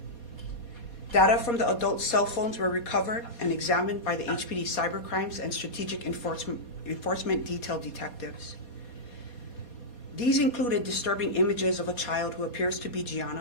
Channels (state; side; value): late; right; 4.2 ms